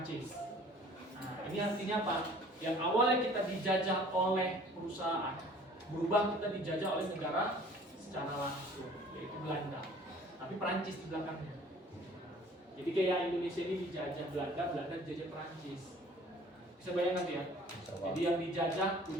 Nah ini artinya apa? Yang awalnya kita dijajah oleh perusahaan, berubah kita dijajah oleh negara secara langsung, yaitu Belanda. Tapi Prancis di belakangnya. Jadi kayak Indonesia ini dijajah Belanda, Belanda dijajah Prancis. Bisa bayangkan ya? Jadi yang dijajah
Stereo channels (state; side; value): normal; both; correlation 0.51